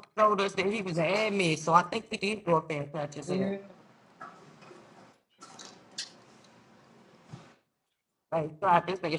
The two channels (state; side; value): identical; both; correlation 1.00